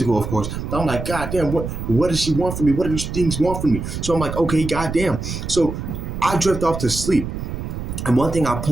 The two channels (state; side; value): noise; right; rumble, 6 dB below the sound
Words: of course. But I'm like, God damn, what does she want from me? What do these things want from me? So I'm like, okay, God damn. So I drift off to sleep. And one thing I'll